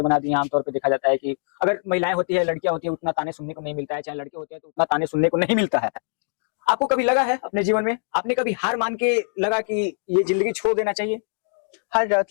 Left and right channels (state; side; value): silent; right; digital silence